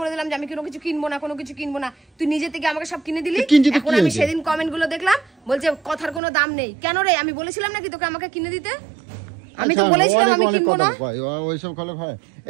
দিলাম যে আমি কোনো কিছু কিনবো না, কোনো কিছু কিনবো না। তুই নিজে থেকে আমাকে সব কিনে দিলি। এখন আমি সেদিন কমেন্ট গুলো দেখলাম, বলছে কথার কোনো দাম নেই। কেন রে, আমি বলেছিলাম নাকি তোকে আমাকে কিনে দিতে? আমি তো বলেছিলাম আমি কিনবো না। ওইসব ভালো হয়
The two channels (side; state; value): left; drops out; at 6.2 s